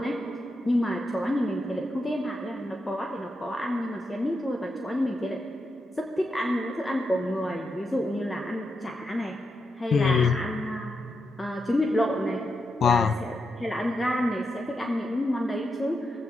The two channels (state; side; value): normal; both; correlation 0.85